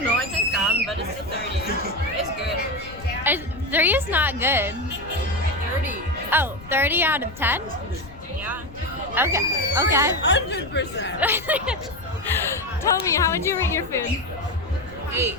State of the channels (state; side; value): noise; left; rumble, 18 dB below the sound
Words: know. I think some, but it's still 30. It's good. 3 is not good. 30. Oh, 30 out of 10? Yeah. Okay. 100%. Tell me, how would you rate your food? 8.